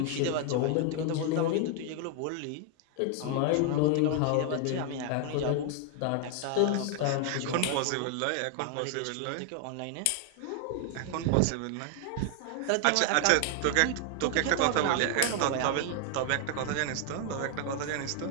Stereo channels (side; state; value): both; different; correlation 0.00